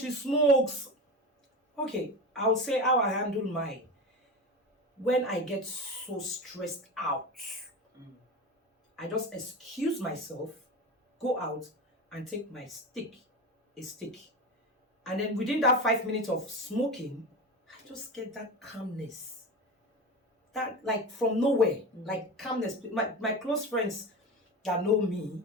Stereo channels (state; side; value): normal; both; correlation 0.25